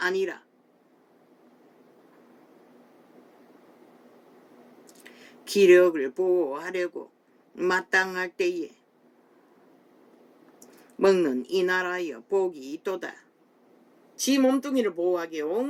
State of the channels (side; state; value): both; identical; correlation 1.00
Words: 기력을 보호하려고 마땅할 때에 먹는 이 나라여 복이 있도다. 지 몸뚱이를 보호하기에